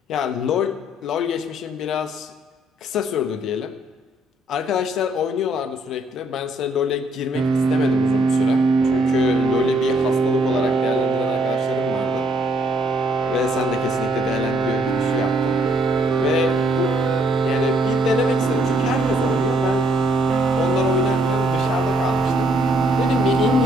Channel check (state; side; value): normal; both; correlation 0.68